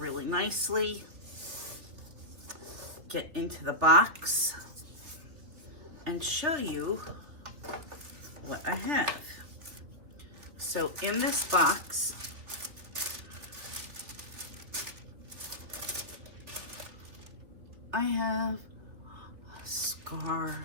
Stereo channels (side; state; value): left; late; 3.3 ms